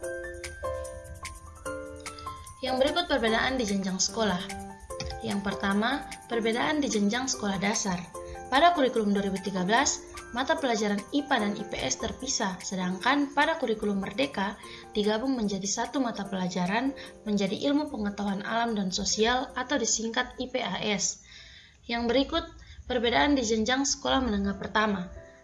Yang berikut perbedaan di jenjang sekolah. Yang pertama, perbedaan di jenjang sekolah dasar. Pada kurikulum 2013, mata pelajaran IPA dan IPS terpisah, sedangkan pada kurikulum Merdeka digabung menjadi satu mata pelajaran menjadi ilmu pengetahuan alam dan sosial atau disingkat IPAS. Yang berikut perbedaan di jenjang sekolah menengah pertama.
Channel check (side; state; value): both; identical; correlation 1.00